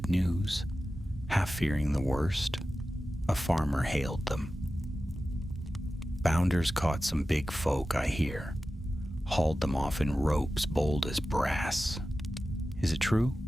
news, half fearing the worst. A farmer hailed them. Bounders caught some big folk, I hear. Hauled them off in ropes bold as brass. Is it true?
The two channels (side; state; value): both; normal; correlation 0.94